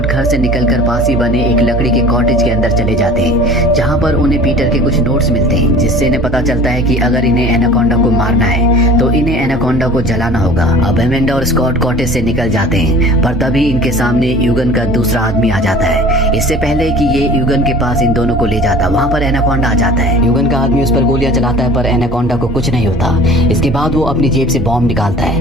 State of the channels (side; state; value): both; normal; correlation 0.44